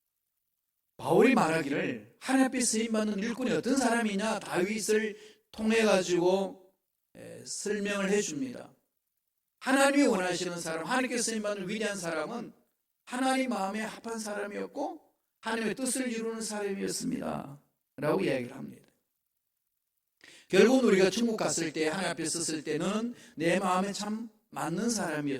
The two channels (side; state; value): both; identical; correlation 1.00